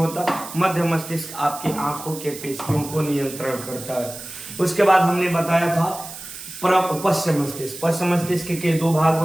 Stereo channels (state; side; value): noise; right; hiss, 12 dB below the sound